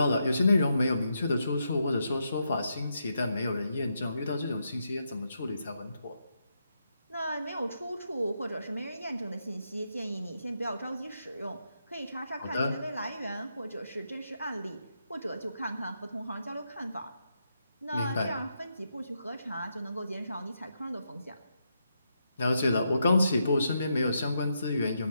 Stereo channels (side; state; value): both; inverted; correlation -0.82